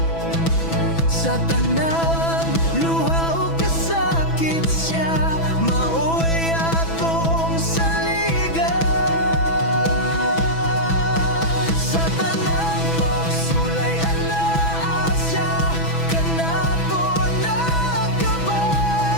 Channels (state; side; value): late; right; 6.1 ms